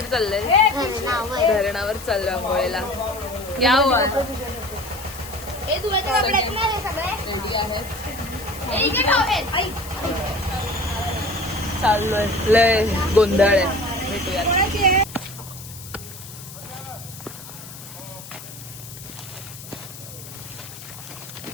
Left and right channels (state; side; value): noise; left; hiss, 14 dB below the sound